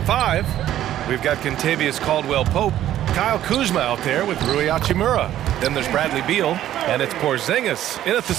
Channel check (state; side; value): quieter; left; 12.4 dB